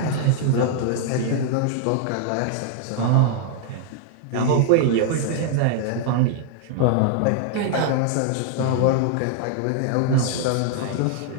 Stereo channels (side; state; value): both; different; correlation -0.01